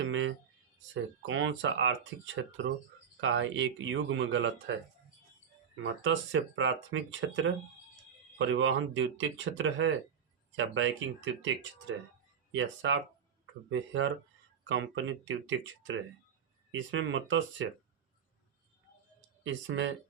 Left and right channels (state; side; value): quieter; left; 7.5 dB